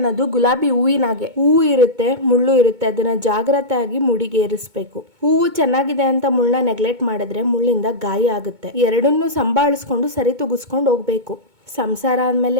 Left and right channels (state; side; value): late; left; 2.2 ms